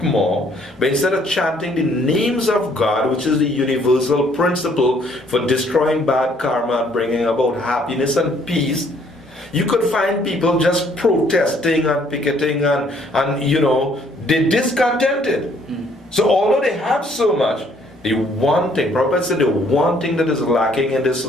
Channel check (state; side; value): normal; both; correlation 0.64